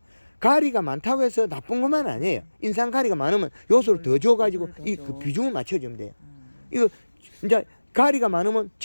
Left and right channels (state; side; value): inverted; both; correlation -1.00